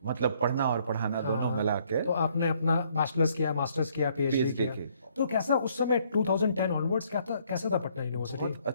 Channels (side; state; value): both; inverted; correlation -0.66